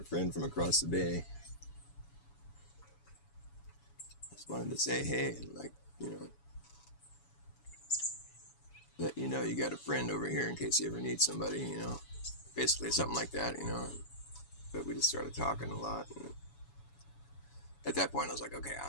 friend from across the bay. Just wanted to say hey, and like, let you know you got a friend over here in case you ever need somebody, basically something like that, But we just started talking a lot, and at that point I was like, okay,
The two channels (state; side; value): late; right; 7.0 ms